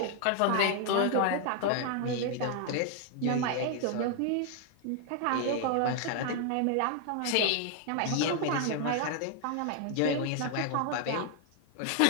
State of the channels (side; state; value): both; different; correlation 0.00